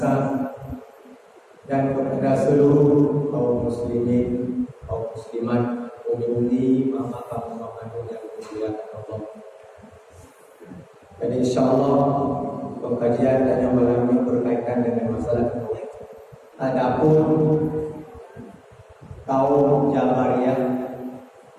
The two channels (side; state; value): both; identical; correlation 1.00